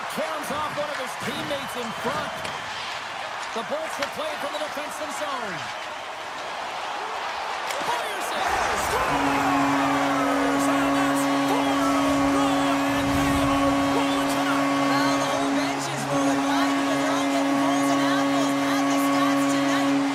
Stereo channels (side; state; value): both; identical; correlation 1.00